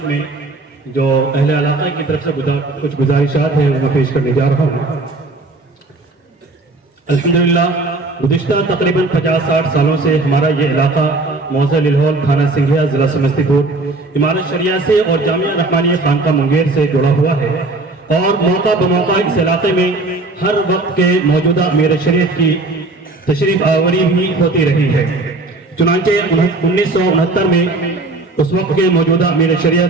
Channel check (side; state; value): left; quieter; 3.2 dB